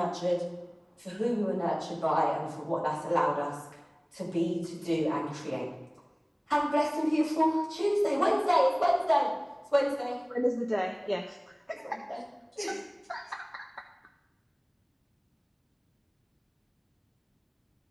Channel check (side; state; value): both; identical; correlation 1.00